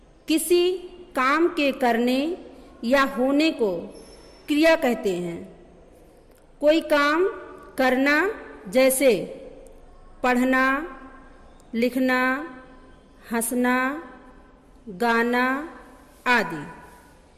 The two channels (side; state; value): both; identical; correlation 1.00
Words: किसी काम के करने या होने को क्रिया कहते हैं। कोई काम करना जैसे पढ़ना, लिखना, हंसना, गाना आदि,